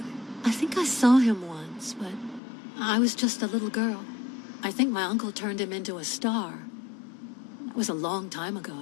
I think I saw him once, but I was just a little girl. I think my uncle turned him into a star. That was a long time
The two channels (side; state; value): right; drops out; at 2.4 s